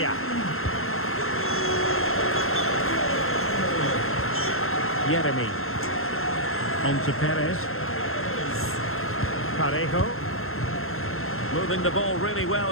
Jeremy. On to Perez. Parejo. Moving the ball really well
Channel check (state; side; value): late; right; 0.61 ms